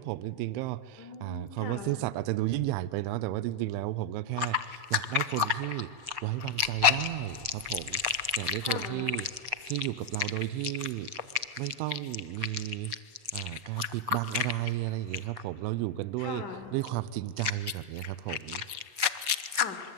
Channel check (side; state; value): left; late; 7.7 ms